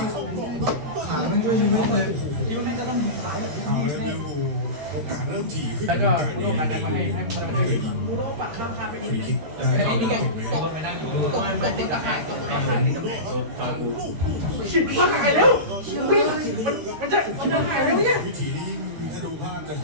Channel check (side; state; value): left; late; 13 ms